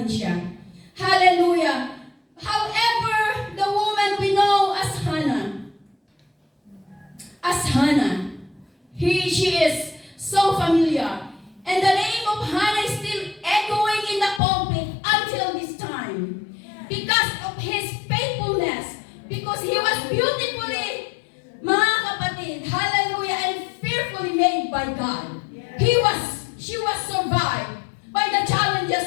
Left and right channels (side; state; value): right; drops out; at 14.4 s